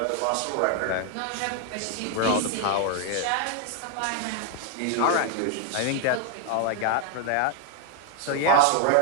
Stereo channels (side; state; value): both; different; correlation 0.00